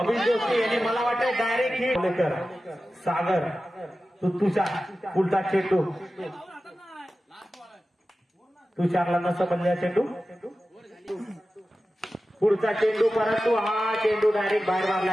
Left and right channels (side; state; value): both; normal; correlation 0.94